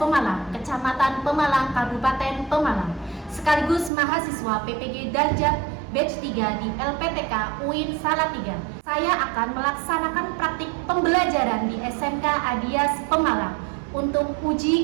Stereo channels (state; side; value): drops out; left; at 3.9 s